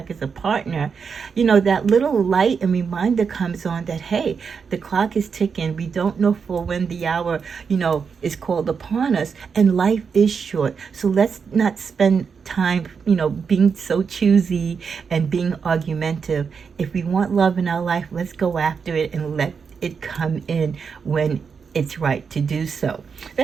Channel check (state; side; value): quieter; left; 6.0 dB